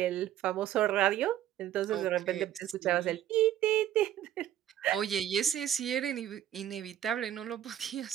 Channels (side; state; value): left; quieter; 11.5 dB